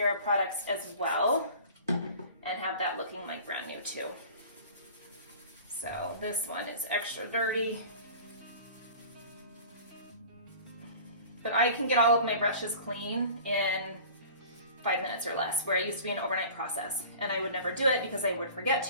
products as well, and have that looking like brand new too. So this one is extra dirty, but I can get all of my brushes clean in 5 minutes or less, where it used to be an overnight process, and I would never do it because I would forget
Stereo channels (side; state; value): both; inverted; correlation -0.43